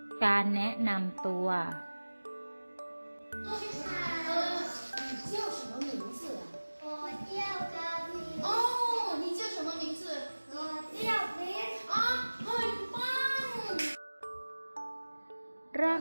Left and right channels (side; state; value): both; inverted; correlation -1.00